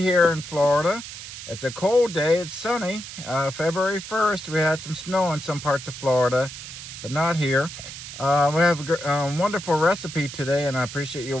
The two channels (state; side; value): noise; right; hiss, 11 dB below the sound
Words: here in Florida. It's a cold day, it's sunny. February 1st, we had some snow in some parts of Florida, but not here. We have a wonderful recipe today, and I appreciate you